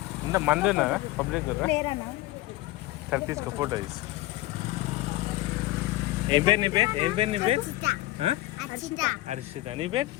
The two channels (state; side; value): quieter; right; 17.9 dB